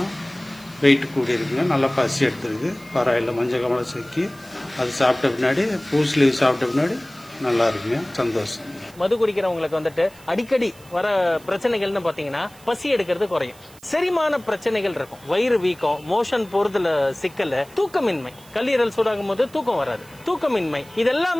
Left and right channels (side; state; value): right; noise; hiss, 24 dB below the sound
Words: வெயிட் கூடி இருக்குங்க. நல்லா பசி எடுத்துருக்கு. பரவாயில்ல, மஞ்சள் காமாலை செக்கி அது சாப்பிட்ட பின்னாடி பூஸ்ட் லீவ் சாப்பிட்ட பின்னாடி நல்லா இருக்குங்க. சந்தோஷம். மது குடிக்கிறவங்களுக்கு வந்துட்டு அடிக்கடி வர பிரச்சனைகள்னு பாத்தீங்கன்னா பசி எடுக்கிறது குறையும், செரிமான பிரச்சனைகள் இருக்கும், வயிறு வீக்கம், மோஷன் போறதுல சிக்கல், தூக்கமின்மை, கல்லீரல் சூடாகும் போது தூக்கம் வராது, தூக்கமின்மை,